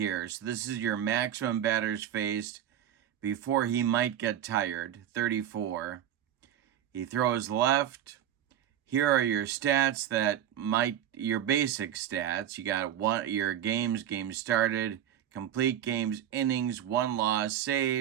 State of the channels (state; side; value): quieter; left; 10.7 dB